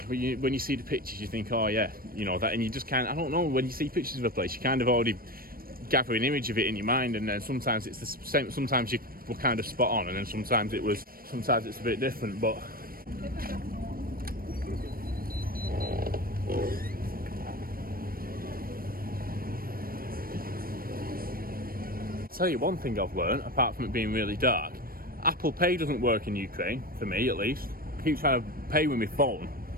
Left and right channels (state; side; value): late; left; 0.43 ms